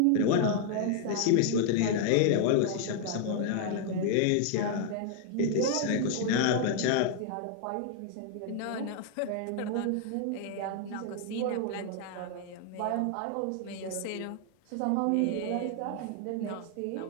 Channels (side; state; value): both; different; correlation 0.00